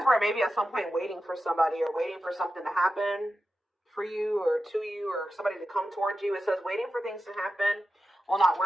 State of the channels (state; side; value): normal; both; correlation 0.92